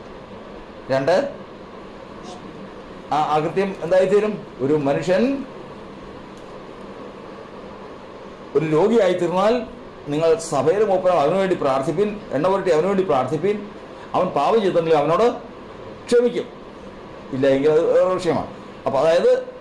2 ആകൃത്യം എന്തായിത്തീരും? ഒരു മനുഷ്യൻ ഒരു രോഗിയായിത്തീർന്നാൽ നിങ്ങൾ സഭയിൽ മൂപ്പനം അവനുവേണ്ടി പ്രാർത്ഥിപ്പിൻ, എണ്ണ പുരട്ടി അവനുവേണ്ടി പ്രാർത്ഥിപ്പിൻ. അവൻ പാപം ചെയ്തിട്ടുണ്ടെങ്കിൽ അവനോട് ക്ഷമിക്കും, ഇല്ല എങ്കിൽ അത് വിഷയമാണ്. അപ്പോൾ അതായത്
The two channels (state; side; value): identical; both; correlation 1.00